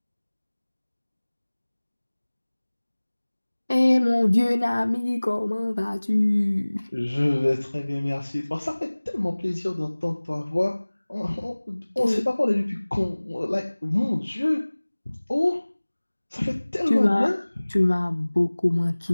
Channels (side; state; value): both; inverted; correlation -1.00